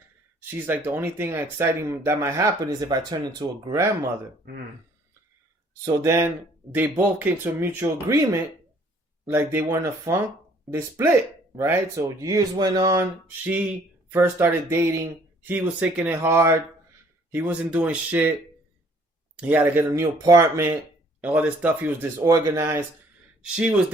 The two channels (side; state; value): both; normal; correlation 0.59